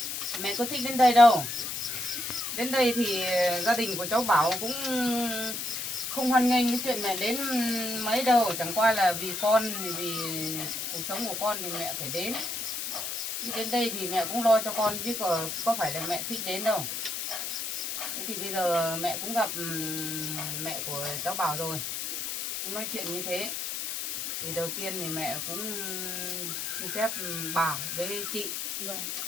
Mẹ có thích đến đây đâu. Đến đây thì gia đình của cháu Bảo cũng không hoan nghênh cái chuyện mẹ đến mấy đâu. Chẳng qua là vì con, vì cuộc sống của con thì mẹ phải đến. Đi đến đây thì mẹ cũng lo cho con chứ có phải là mẹ thích đến đâu. Thế thì bây giờ mẹ cũng gặp mẹ của cháu Bảo rồi, cũng nói chuyện như thế. Thì đầu tiên thì mẹ cũng xin phép bà với chị Vâng.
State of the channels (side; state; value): left; noise; hiss, 3 dB below the sound